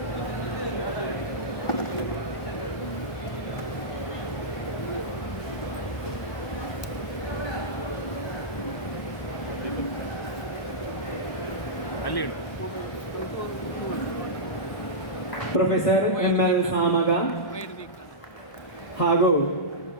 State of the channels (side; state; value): right; late; 1.2 ms